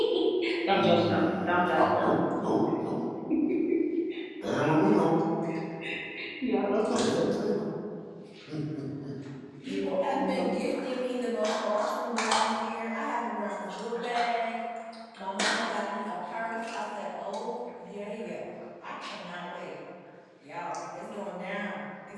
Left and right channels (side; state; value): both; identical; correlation 1.00